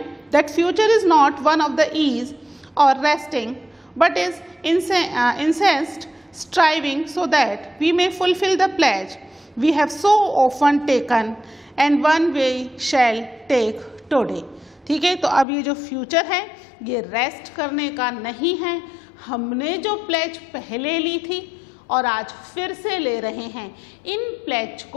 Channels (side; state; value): right; drops out; at 15.5 s